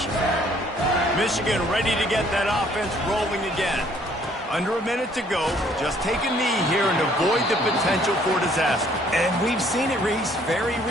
for you. Michigan ready to get that offense rolling again. Under a minute to go. Just take a knee here and avoid the potential for disaster. And we've seen it, Reese, very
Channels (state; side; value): normal; both; correlation 0.62